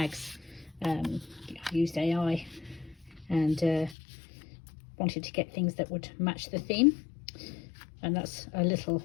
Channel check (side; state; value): right; drops out; at 4.0 s